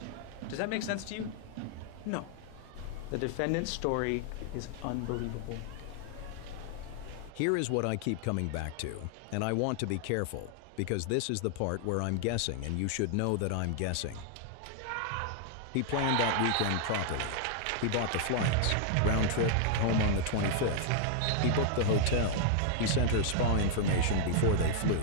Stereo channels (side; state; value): both; different; correlation 0.00